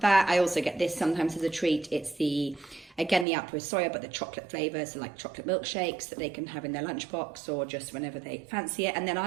I also get this sometimes as a treat. It's again, the Outpro soya, but the chocolate flavour, so like chocolate milkshakes that they can have in their lunchbox or just whenever they fancy it. And then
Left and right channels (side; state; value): left; drops out; at 3.2 s